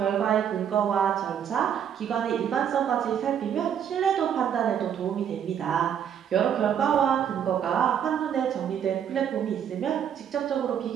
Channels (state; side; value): quieter; left; 8.8 dB